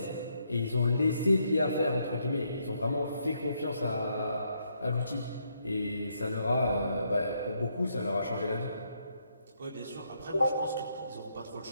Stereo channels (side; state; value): both; inverted; correlation -0.76